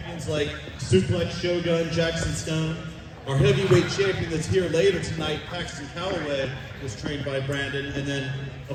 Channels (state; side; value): identical; both; correlation 1.00